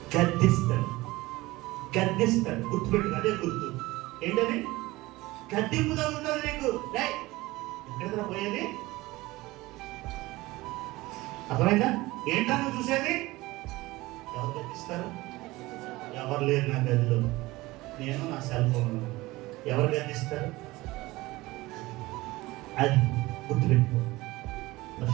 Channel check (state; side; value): quieter; left; 19.9 dB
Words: గద్దిస్తాడు. గద్దిస్తాడు. గుర్తుపెట్టు, అదే గుర్తు. ఏంటది? గద్దింపు తగ్గుతుంది నీకు. ఎక్కడ పోయేది? అర్థమైందా? ఏంటో నువ్వు చూసేది? ఎవరు గద్దిస్తారు? ఎవరు లేరు నా గదిలో, నేను నా సెల్ ఫోన్. ఎవరు గద్దిస్తారు? అది గుర్తుపెట్టుకో.